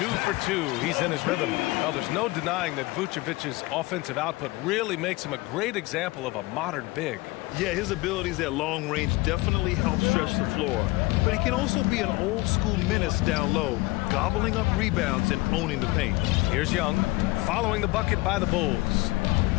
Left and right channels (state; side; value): quieter; right; 21.4 dB